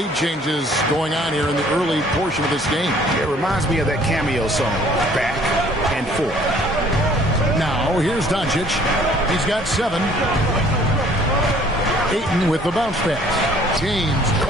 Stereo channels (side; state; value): both; normal; correlation 0.57